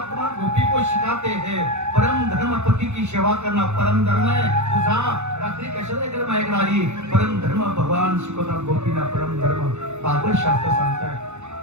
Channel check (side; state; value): left; late; 0.83 ms